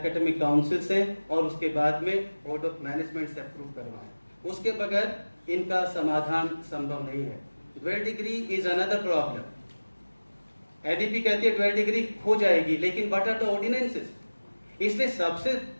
काउंसिल से और उसके बाद में बोर्ड ऑफ मैनेजमेंट से अप्रूव करवाएं। उसके बगैर इनका समाधान संभव नहीं है। Dual degree is another problem. ADP कहती है ड्वेल डिग्री हो जाएगी, लेकिन व्हाट आर द ऑर्डिनेंसेस? इसलिए सबसे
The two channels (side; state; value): both; inverted; correlation -1.00